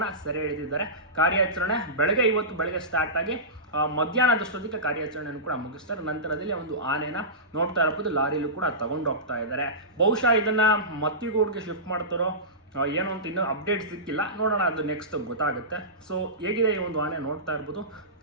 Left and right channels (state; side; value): normal; both; correlation -0.19